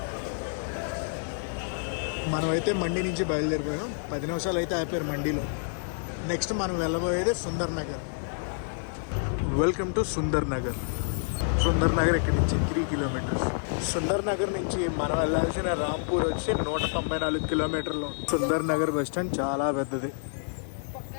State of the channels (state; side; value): silent; right; digital silence